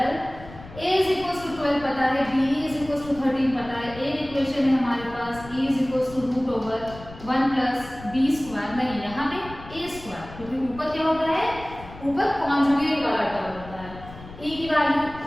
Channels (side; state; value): left; noise; rumble, 16 dB below the sound